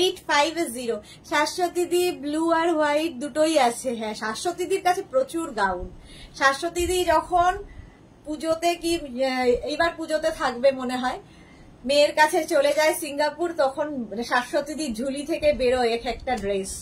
শাশ্বতীদি ব্লু আর হোয়াইট দুটোই আছে। হ্যাঁ, শাশ্বতীদির কাছে প্রচুর গাউন। শাশ্বতীদি যখন পুজোতে, কি এইবার পুজোতে থাকবে মনে হয়, মেয়ের কাছে চলে যায় সিঙ্গাপুর, তখন শাশ্বতীদি ঝুলি থেকে বেরোয় এক একটা ড্রেস।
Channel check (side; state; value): both; identical; correlation 1.00